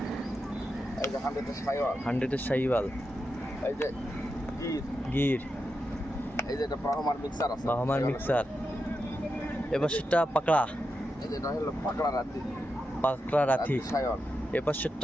এই যে 100 এর শাইওয়াল। 100 এর শাইওয়াল। এই যে গির। গির। এই যে এটা ব্রাহ্মার মিক্সার আছে। বাহামার মিক্সার। এবার সেটা পাকড়া। এই যে এটা হলো পাকড়া রাতি। পাকড়া রাথি। শাইওয়াল। এবার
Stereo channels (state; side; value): normal; both; correlation 0.87